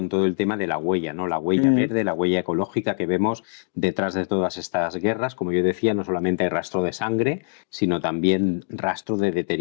todo el tema de la huella, ¿no? La huella verde, la huella ecológica que vemos detrás de todas estas guerras. Como yo decía, no solamente hay rastro de sangre, sino también rastro de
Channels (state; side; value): silent; right; digital silence